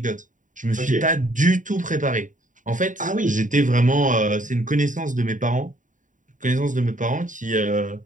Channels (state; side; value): late; left; 0.37 ms